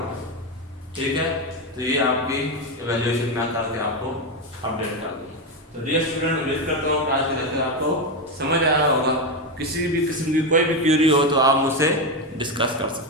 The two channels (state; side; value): normal; both; correlation 0.11